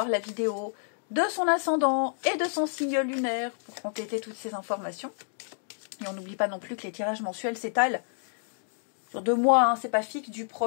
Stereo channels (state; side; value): silent; right; digital silence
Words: la vidéo de son ascendant et de son signe lunaire pour compléter toutes ces informations. Et on n'oublie pas non plus que les tirages mensuels s'étalent sur 2 mois, c'est pas fixe, du